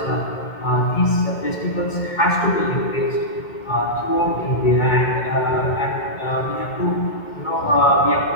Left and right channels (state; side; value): late; right; 2.2 ms